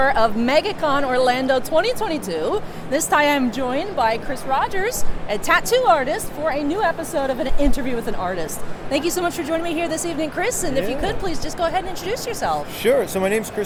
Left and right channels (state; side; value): identical; both; correlation 1.00